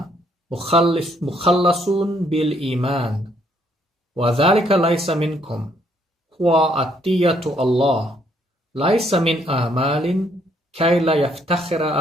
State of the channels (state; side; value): normal; both; correlation 0.69